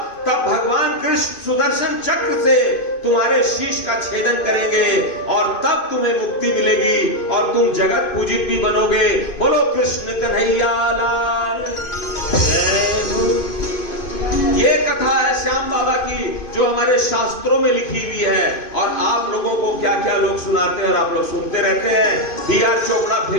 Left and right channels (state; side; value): late; right; 2.5 ms